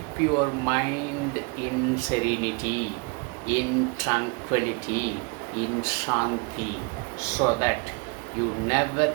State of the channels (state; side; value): quieter; left; 30.6 dB